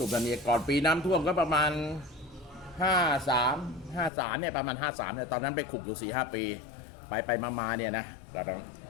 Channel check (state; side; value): drops out; right; at 4.1 s